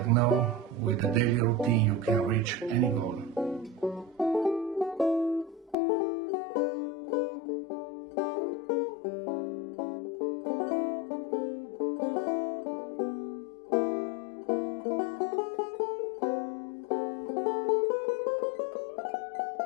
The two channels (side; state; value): right; drops out; at 5.8 s